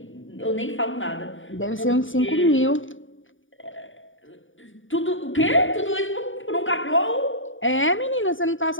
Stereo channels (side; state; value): right; late; 0.57 ms